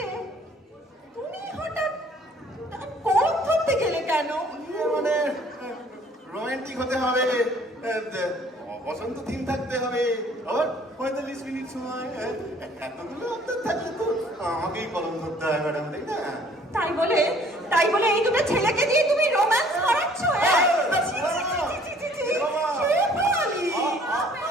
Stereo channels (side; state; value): both; normal; correlation 0.57